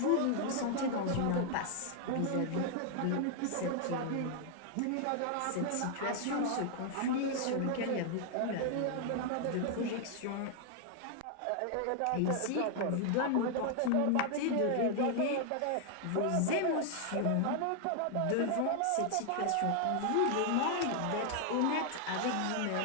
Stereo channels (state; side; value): different; both; correlation 0.00